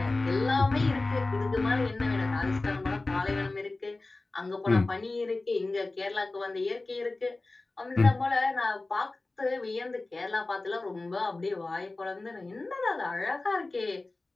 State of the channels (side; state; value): right; quieter; 3.2 dB